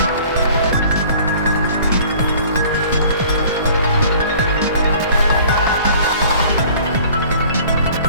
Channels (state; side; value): inverted; both; correlation -0.50